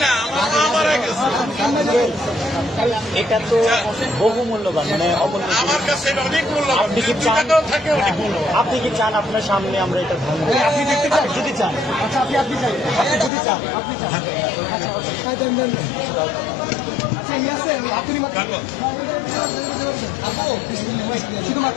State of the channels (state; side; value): drops out; right; at 13.3 s